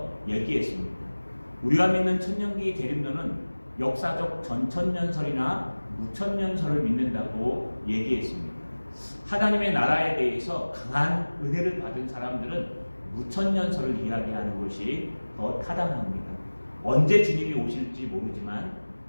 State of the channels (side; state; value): both; inverted; correlation -1.00